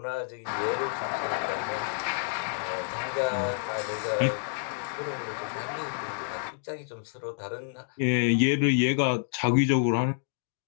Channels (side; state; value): right; silent; 59 dB below the other